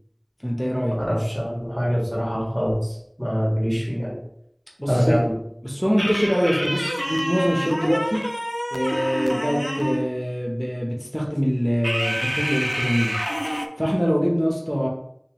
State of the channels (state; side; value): identical; both; correlation 1.00